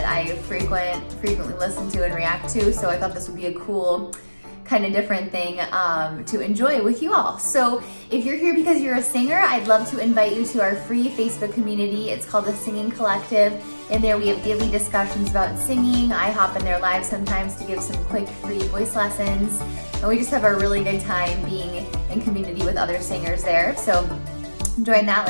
I frequently listen to and react to. So I thought this would be a cool kind of different thing to enjoy with you all. So if you're here because you're a singer, I'd love to invite you to our free Facebook community. It's called the Singing Collective. In there we have daily discussions about singing. I hop in there live sometimes to give some quick free voice lessons. And we just have a really good time being in community with other singers there. So join that.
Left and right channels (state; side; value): inverted; both; correlation -1.00